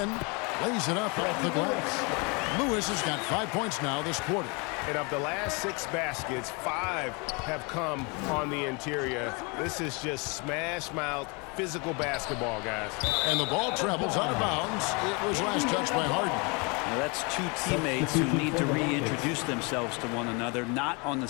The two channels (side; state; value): right; quieter; 30.8 dB